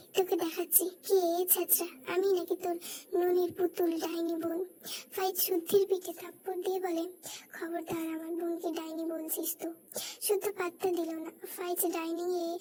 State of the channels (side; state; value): both; identical; correlation 1.00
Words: তোকে দেখাচ্ছি কে ছেঁচড়া, আমি নাকি তোর ননির পুতুল ডাইনি বোন। ফাইজ শুদ্ধির পিঠে থাপ্পড় দিয়ে বলে, খবরদার আমার বোনকে ডাইনি বলছিস তো। শুদ্ধ পাত্তা দিল না। ফাইজ ডাইনিং এ